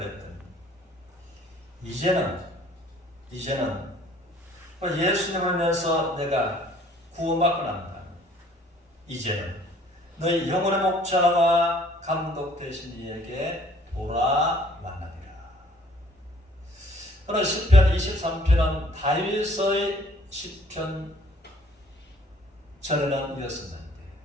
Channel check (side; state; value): both; normal; correlation 0.57